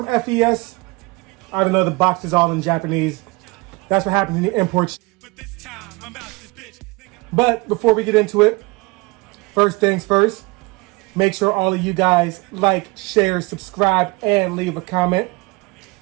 FES. I don't know, the box is all in Japanese. That's what happens in the import. But this time, I'm out this bitch. But before we get into it, first things first, make sure all of you guys like, share, subscribe, and leave a comment.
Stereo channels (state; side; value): quieter; left; 25.3 dB